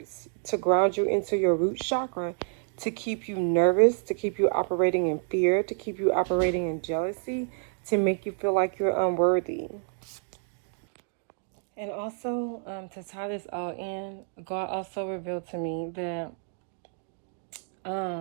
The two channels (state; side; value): silent; left; 55 dB below the other